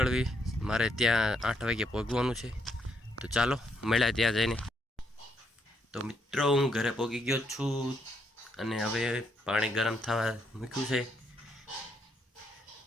મારે ત્યાં 8 વાગે પહોંચવાનું છે। તો ચાલો મળ્યા ત્યાં જઈને। તો મિત્રો હું ઘરે પહોંચી ગયો છું અને હવે પાણી ગરમ થવા મૂક્યું છે।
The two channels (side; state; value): both; normal; correlation 0.76